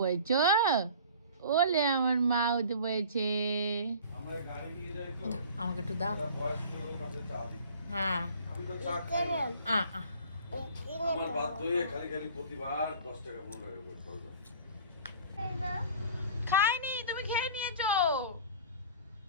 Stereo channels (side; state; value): both; inverted; correlation -0.44